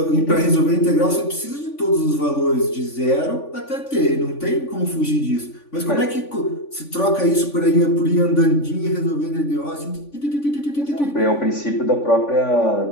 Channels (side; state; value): right; late; 3.5 ms